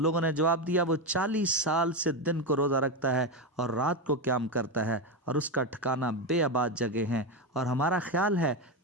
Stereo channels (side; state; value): both; normal; correlation 0.12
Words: نے جواب دیا وہ 40 سال سے دن کو روزہ رکھتا ہے اور رات کو قیام کرتا ہے، اور اس کا ٹھکانہ بے آباد جگہ ہیں، اور ہمارا خیال ہے